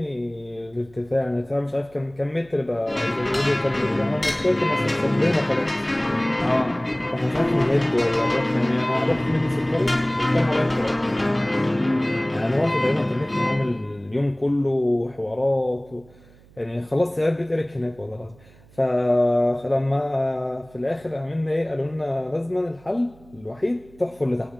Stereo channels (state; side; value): noise; right; hum, 26 dB below the sound